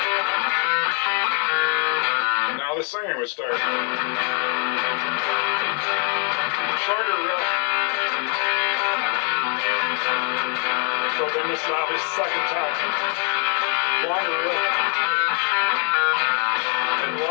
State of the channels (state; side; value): quieter; right; 35.1 dB